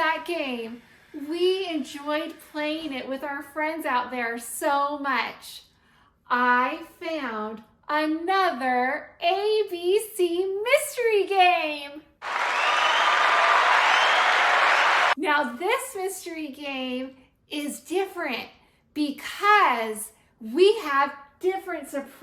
game. We enjoyed playing it with our friends out there so much. I found another ABC mystery game. Now this mystery game is different because we have different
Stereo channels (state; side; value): identical; both; correlation 1.00